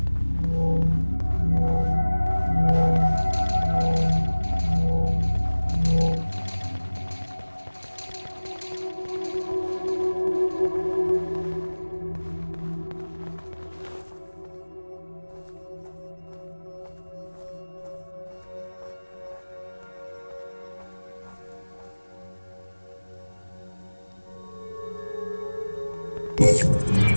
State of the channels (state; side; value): inverted; both; correlation -1.00